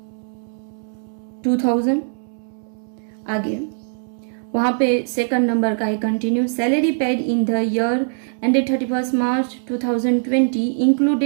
2,000। आगे वहाँ पे सेकंड नंबर का है continue salary paid in the year ended 31 March 2020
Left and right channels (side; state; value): left; silent; digital silence